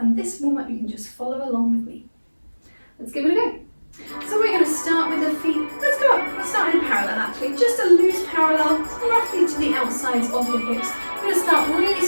this warm-up you can just follow along with me. Let's give it a go. So we're going to start with the feet. Let's go up. We'll start in parallel actually, just a loose parallel, roughly to the outsides of the hips. We're going to start really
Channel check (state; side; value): inverted; both; correlation -1.00